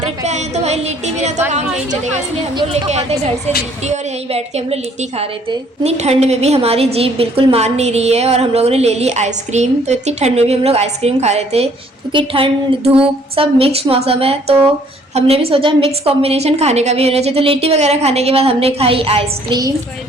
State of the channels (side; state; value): both; normal; correlation 0.61